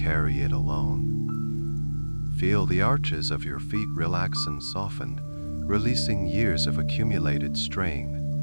it alone. Feel the arches of your feet relax and soften, releasing years of accumulated strain.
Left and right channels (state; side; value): inverted; both; correlation -1.00